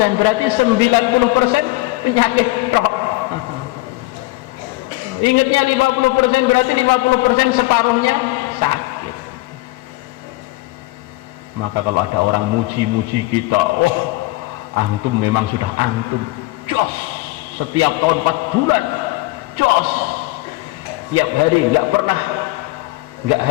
berarti 90% penyakit tok. Ingatnya 50%, berarti 50% separuhnya sakit. Maka kalau ada orang muji-muji kita, oh antum memang sudah antum jos, setiap tahun 4 bulan jos, tiap hari nggak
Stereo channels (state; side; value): quieter; right; 20.8 dB